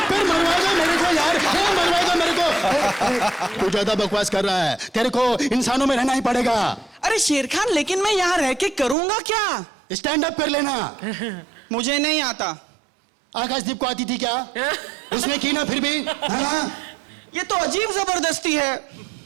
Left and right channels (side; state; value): left; drops out; at 9.0 s